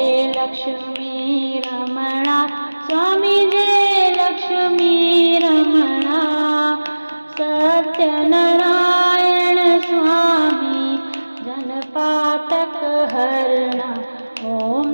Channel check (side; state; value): both; inverted; correlation -1.00